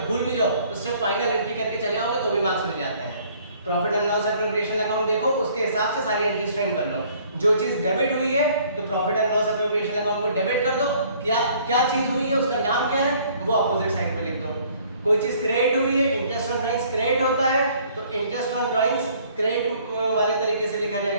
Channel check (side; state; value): both; inverted; correlation -0.59